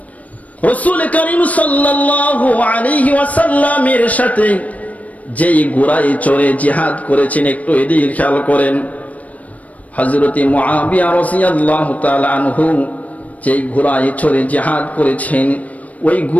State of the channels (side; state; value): right; late; 0.069 ms